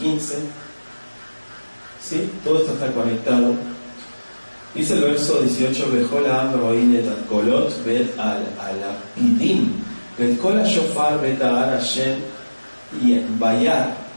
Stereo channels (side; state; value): both; inverted; correlation -1.00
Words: ¿Sí? Todo esto está conectado. Dice el verso 18, Bejol ha'am ro'in et kolot bet alapidim, bet kol hashofar bet ha'ar Hashem bayar